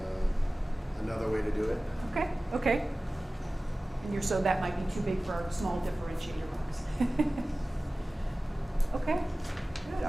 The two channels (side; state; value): both; normal; correlation 0.97